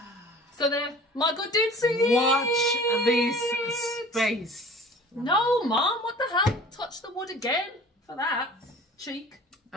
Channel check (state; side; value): normal; both; correlation 0.45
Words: So there, my good dude, see Watch this space. No, Mom, what the hell? Touch the wood again for that. Cheek.